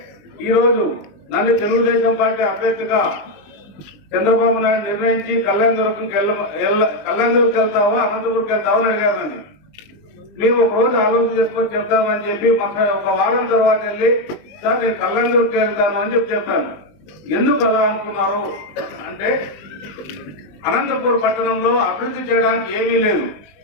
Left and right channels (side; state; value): right; late; 20 ms